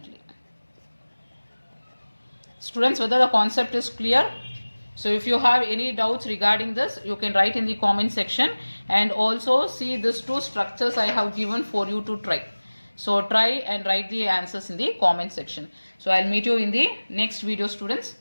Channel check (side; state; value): both; inverted; correlation -1.00